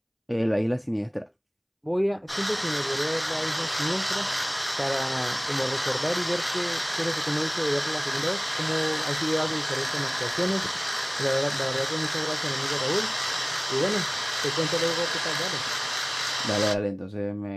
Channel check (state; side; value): identical; both; correlation 1.00